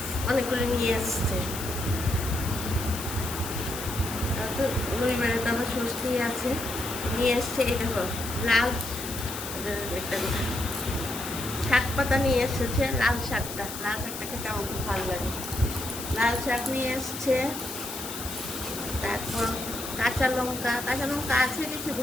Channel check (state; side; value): noise; left; hiss, 8 dB below the sound